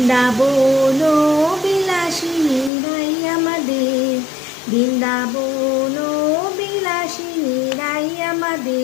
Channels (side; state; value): right; drops out; at 2.7 s